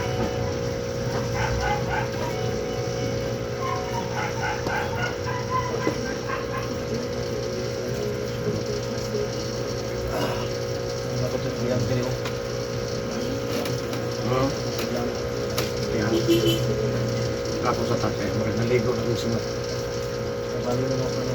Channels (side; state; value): both; identical; correlation 1.00